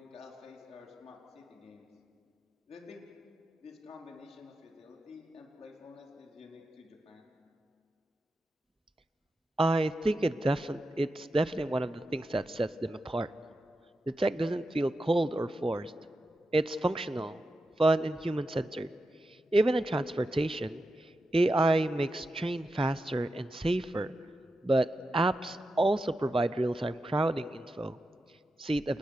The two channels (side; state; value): both; normal; correlation 0.89